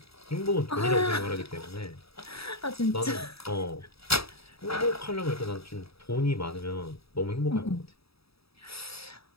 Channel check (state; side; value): late; right; 0.77 ms